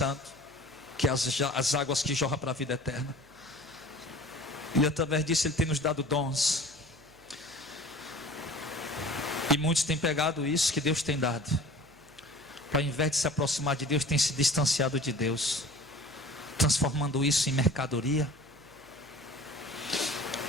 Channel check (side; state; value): right; noise; hum, 27 dB below the sound